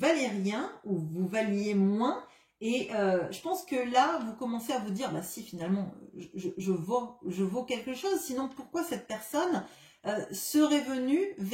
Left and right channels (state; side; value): identical; both; correlation 1.00